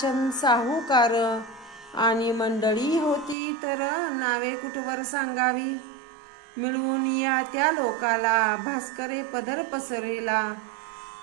साहूकार, आणि मंडळी होती तर नावे कुठवर सांगावी. मिळून या त्या लोकाला भास्करे पदर पसरला,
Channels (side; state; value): left; drops out; at 3.4 s